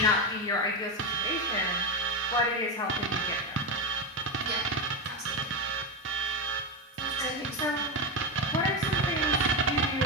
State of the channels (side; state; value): both; normal; correlation 0.14